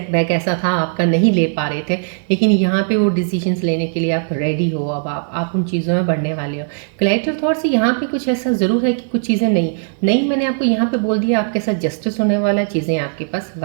ऐसा था आपका, नहीं ले पा रहे थे, लेकिन यहाँ पे वो डिसीजंस लेने के लिए आप रेडी हो, अब आप उन चीज़ों में बढ़ने वाले हो। कलेक्टिव थॉट से यहाँ पे कुछ ऐसा ज़रूर है कि कुछ चीज़ें नहीं नहीं, मैंने आपको यहाँ पे बोल दिया, आपके साथ जस्टिस होने वाला है, चीज़ें आपके पास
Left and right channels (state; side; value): silent; left; 55 dB below the other